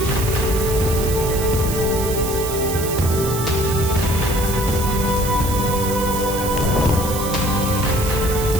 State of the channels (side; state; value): right; noise; hiss, 7 dB below the sound